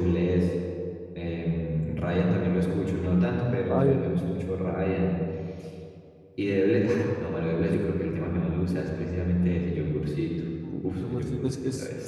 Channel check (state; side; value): identical; both; correlation 1.00